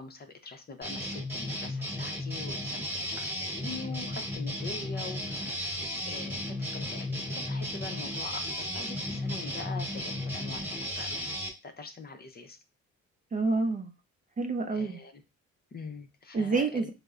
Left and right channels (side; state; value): both; normal; correlation 0.45